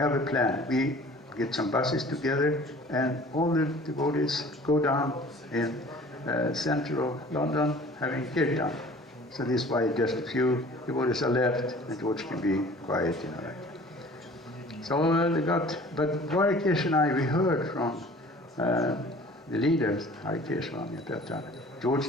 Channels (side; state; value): both; normal; correlation 0.48